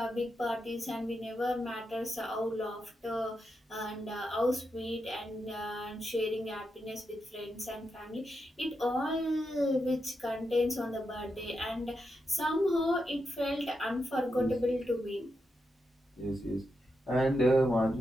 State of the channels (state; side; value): normal; both; correlation 0.86